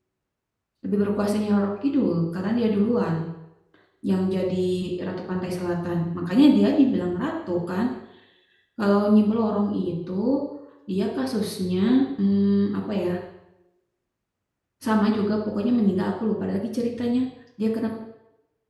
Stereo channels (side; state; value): both; identical; correlation 1.00